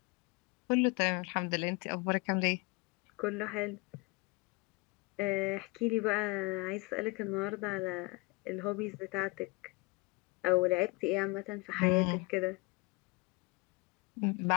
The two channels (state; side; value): quieter; right; 25.4 dB